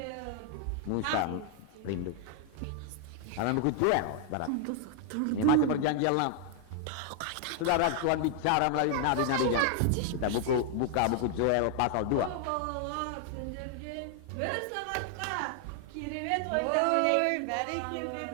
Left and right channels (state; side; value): different; both; correlation 0.00